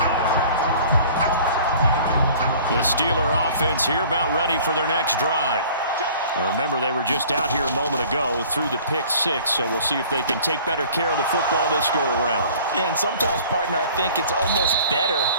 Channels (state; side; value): inverted; both; correlation -0.49